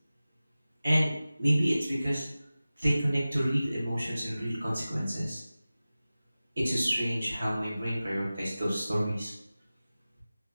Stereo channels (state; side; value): inverted; both; correlation -0.96